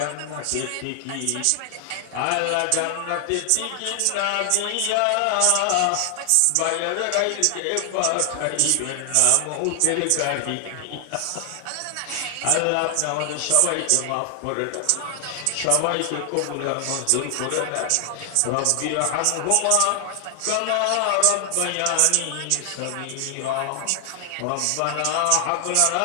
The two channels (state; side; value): different; both; correlation 0.00